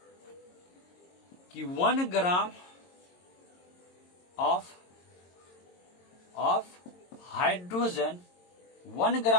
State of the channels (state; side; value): late; right; 22 ms